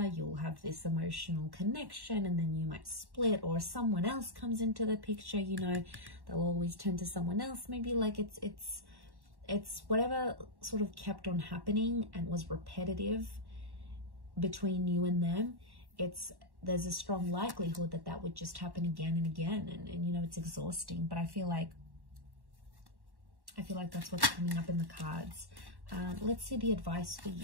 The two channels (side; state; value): left; late; 1.1 ms